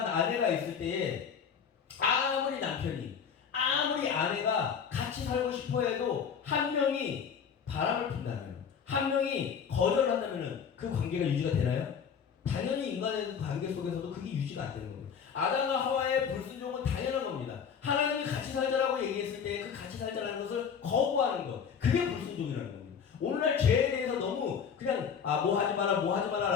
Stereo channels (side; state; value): right; quieter; 7.0 dB